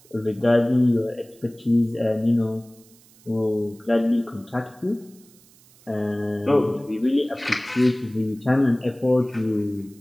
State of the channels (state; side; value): noise; right; hiss, 27 dB below the sound